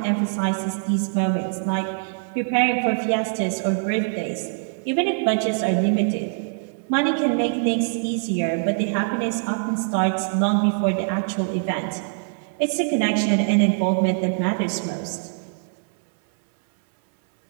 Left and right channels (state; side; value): silent; left; 63 dB below the other